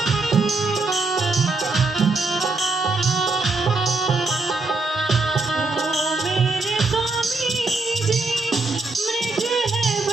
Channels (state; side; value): quieter; left; 3.4 dB